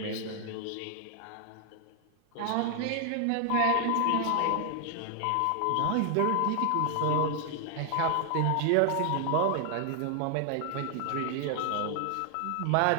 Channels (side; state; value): both; different; correlation 0.00